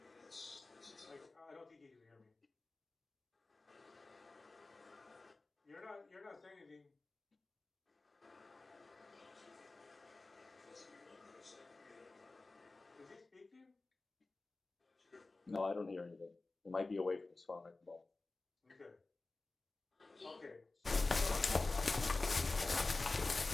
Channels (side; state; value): right; quieter; 3.4 dB